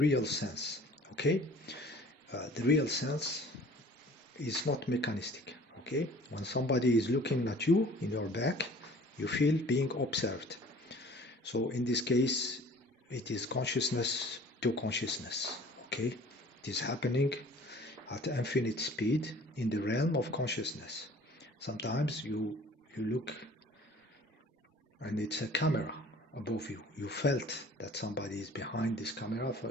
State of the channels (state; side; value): normal; both; correlation 0.49